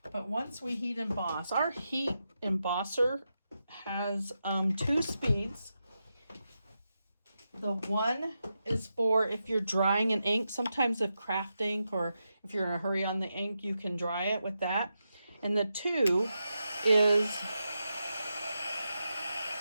But once we heat emboss, our heat embosser has 2 speeds. The one is for if you're drying an ink. Sometimes if craft ink, or if you're in a hurry on the ink, you can dry it with that. And the 2 is,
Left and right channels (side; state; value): both; inverted; correlation -0.88